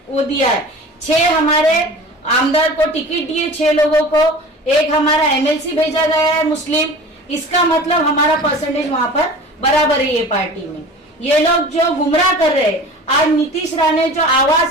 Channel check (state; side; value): normal; both; correlation 0.39